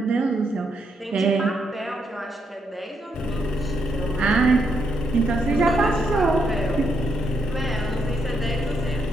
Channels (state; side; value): normal; both; correlation 0.78